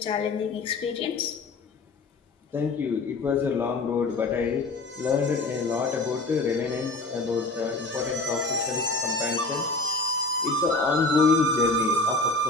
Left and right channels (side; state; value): right; quieter; 3.3 dB